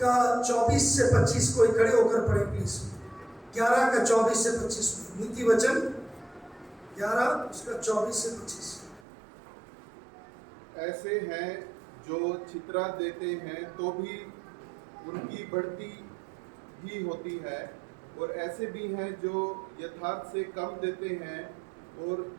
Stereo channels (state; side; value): drops out; left; at 9.0 s